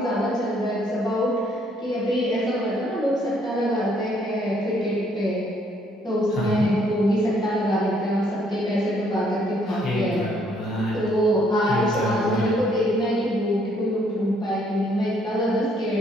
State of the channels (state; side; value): normal; both; correlation 0.67